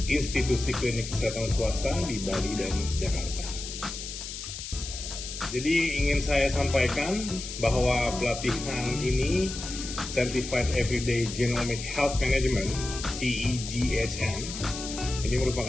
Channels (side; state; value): left; noise; hiss, 8 dB below the sound